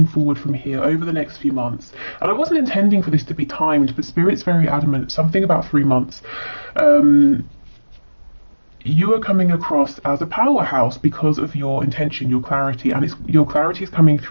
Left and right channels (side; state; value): both; inverted; correlation -1.00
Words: forward from here over the next few months, and I wasn't intending for this to be timed, but Spirit's very adamant, something about 3 months. You are coming across as a powerhouse because of your intention, your clarity, and your clarity is coming